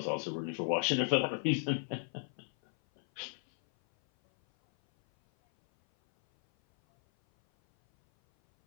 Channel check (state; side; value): silent; right; 55 dB below the other